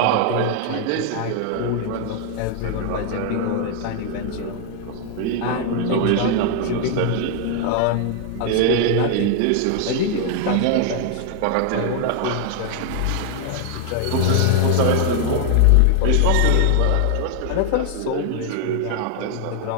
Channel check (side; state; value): both; different; correlation 0.00